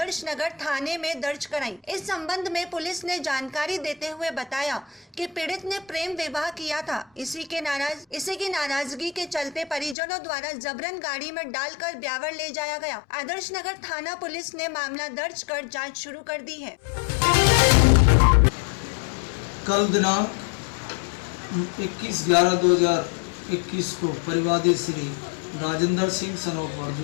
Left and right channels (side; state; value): right; drops out; at 10.0 s